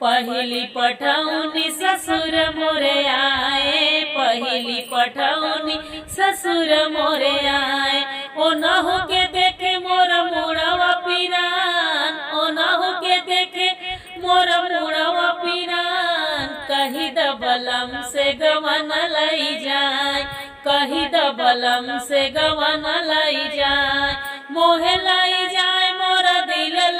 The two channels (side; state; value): both; identical; correlation 1.00